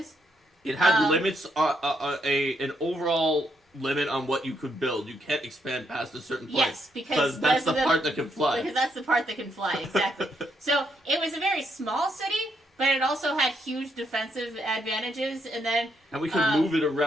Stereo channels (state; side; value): normal; both; correlation 0.76